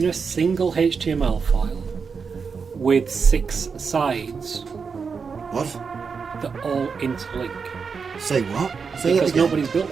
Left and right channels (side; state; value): left; quieter; 5.6 dB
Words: a single HTML file with 6 sides What? that all interlink. Say what? Say Because that again. nobody's built